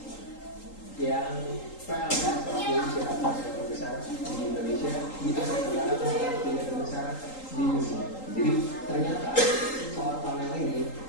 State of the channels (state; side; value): late; right; 3.8 ms